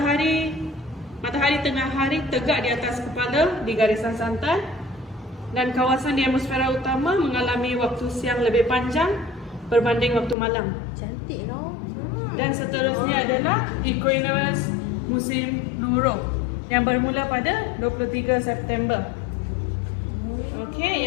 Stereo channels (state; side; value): drops out; right; at 10.4 s